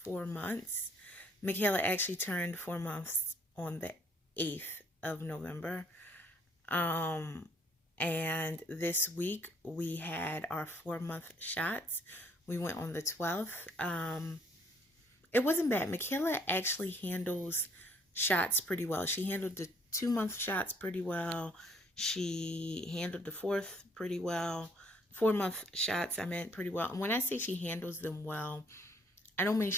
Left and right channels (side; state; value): both; normal; correlation 0.64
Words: months. Michaela actually turned 4 months on the 8th of November. Um, and this week we had our 4 month shots. We went on the 12th. It wasn't bad. Michaela actually handles shots pretty well. She handled the 2 month shots pretty well. She handled the fourth pretty well. 4 month shots, I meant, pretty well. And when I say she handles them well, I don't mean